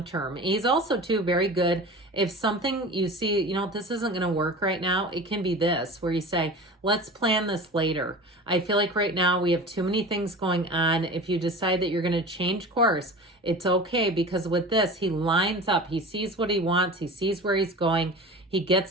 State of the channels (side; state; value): both; normal; correlation 0.35